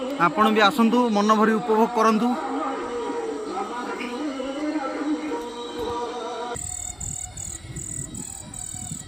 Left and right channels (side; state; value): right; noise; hum, 28 dB below the sound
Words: आपण भी आसतु मन भरी उपभोग करंतु।